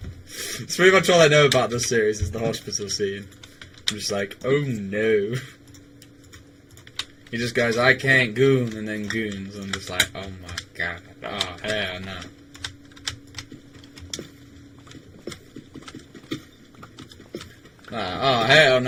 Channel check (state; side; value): identical; both; correlation 1.00